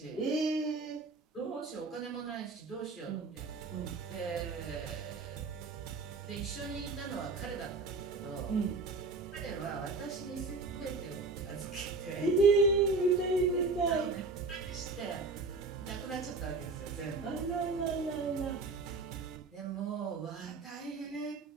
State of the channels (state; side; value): quieter; left; 3.8 dB